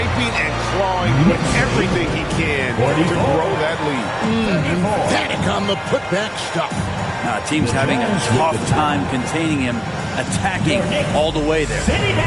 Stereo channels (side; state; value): both; identical; correlation 1.00